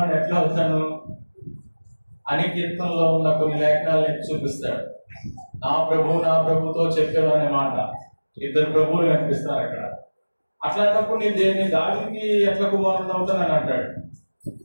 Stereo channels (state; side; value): inverted; both; correlation -1.00